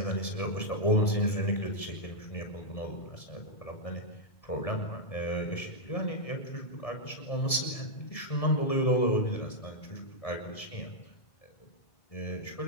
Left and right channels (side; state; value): right; late; 1.7 ms